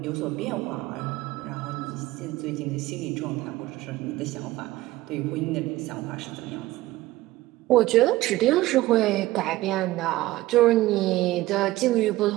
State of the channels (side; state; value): left; quieter; 17.3 dB